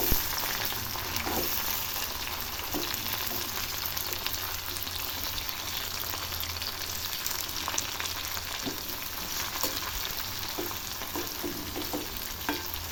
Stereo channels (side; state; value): both; identical; correlation 1.00